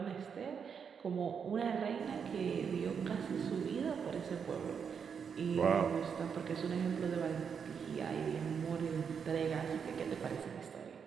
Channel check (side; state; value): left; quieter; 6.8 dB